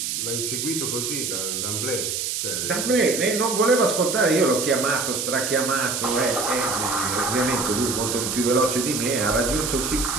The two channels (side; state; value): right; noise; hiss, 2 dB below the sound